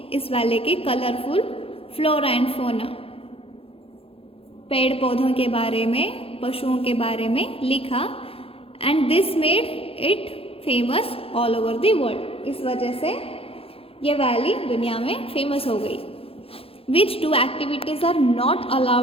इस वैली के कलरफुल फ्लोरा एंड फोना, पेड़ पौधों के बारे में, पशुओं के बारे में लिखा. And this made it famous all over the world. इस वजह से ये वैली दुनिया में फेमस हो गई. Which two activities are not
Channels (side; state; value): right; late; 0.27 ms